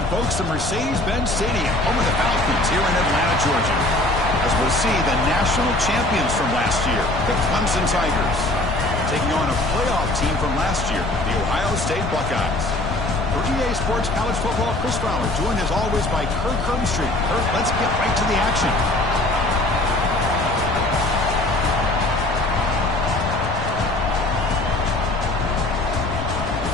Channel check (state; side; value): noise; left; rumble, 6 dB below the sound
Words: folks, to Mercedes-Benz Stadium, home of the Falcons here in Atlanta, Georgia. As we'll see the national champions from last year, the Clemson Tigers, taking on a playoff team from last year, the Ohio State Buckeyes. For EA Sports College Football, Chris Fowler, joined as always by Kirk Herbstreit. Kirk, let's get right to the action.